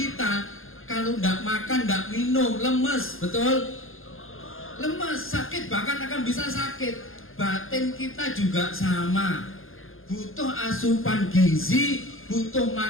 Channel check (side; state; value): right; late; 0.60 ms